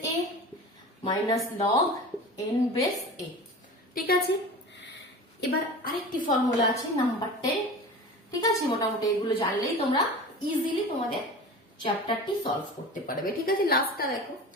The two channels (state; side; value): normal; both; correlation 0.35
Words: a minus log n base a। ঠিক আছে, এবার আরেকটি ফর্মুলা আছে নাম্বার 10। ঠিক আছে, মোটামুটি এগুলো জানলেই তোমরা ইজিলি তোমাদের চ্যাপ্টারটি সলভ করতে পারবে। ঠিক আছে, লাস্টটা দেখো,